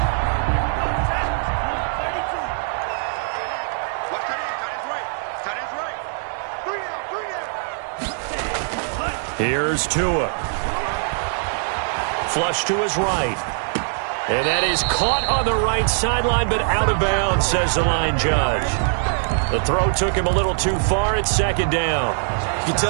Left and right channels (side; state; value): left; silent; digital silence